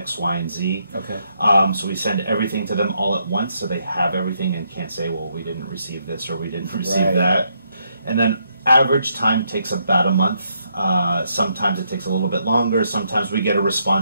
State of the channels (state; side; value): inverted; both; correlation -0.77